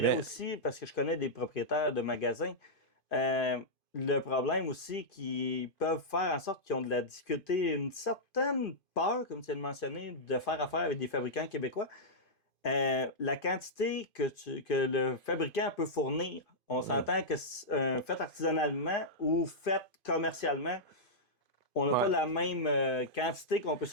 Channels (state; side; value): late; right; 2.5 ms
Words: aussi, parce que je connais des propriétaires de magasins, le problème aussi qu'ils peuvent faire en sorte qu'ils ont de la difficulté, une certaine peur, comme tu viens de mentionner, de faire affaire avec des fabricants québécois. La quantité que le fabricant peut fournir, on s'entend que fait artisanalement ou fait commercialement, on n'a pas la même quantité qu'on peut